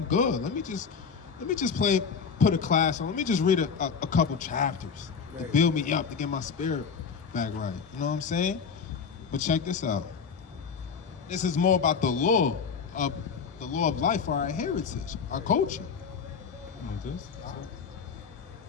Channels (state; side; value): quieter; right; 6.0 dB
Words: good. Let me just put a class on. Let me just read a couple chapters to build me up, to get my spirit back right. You know what I'm saying? But check this out. This is more about the law of life for our heritage, our culture.